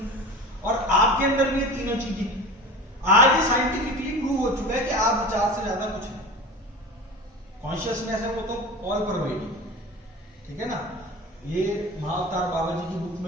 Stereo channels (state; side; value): normal; both; correlation 0.33